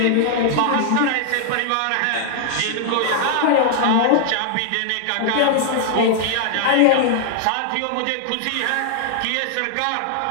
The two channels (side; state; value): both; different; correlation 0.00